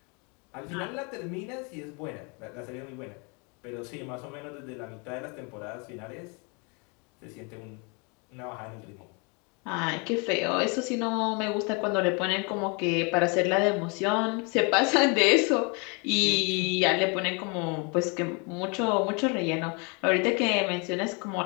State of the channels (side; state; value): right; quieter; 32.7 dB